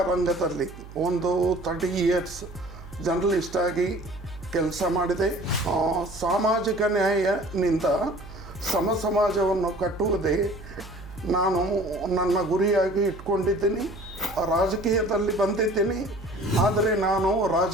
ರಂಗದಲ್ಲಿ ಒಂದು 30 ಇಯರ್ಸ್ ಜರ್ನಲಿಸ್ಟ್ ಆಗಿ ಕೆಲಸ ಮಾಡಿದೆ. ಸಾಮಾಜಿಕ ನ್ಯಾಯನಿಂದ ಸಮಾಜವನ್ನು ಕಟ್ಟುವುದೇ ನಾನು ನನ್ನ ಗುರಿಯಾಗಿ ಇಟ್ಕೊಂಡಿದ್ದೀನಿ. ರಾಜಕೀಯದಲ್ಲಿ ಬಂದಿದ್ದೀನಿ, ಆದರೆ ನಾನು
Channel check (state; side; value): noise; right; hum, 16 dB below the sound